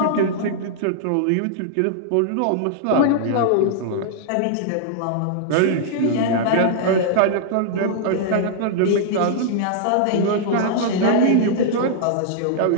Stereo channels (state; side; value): different; both; correlation -0.01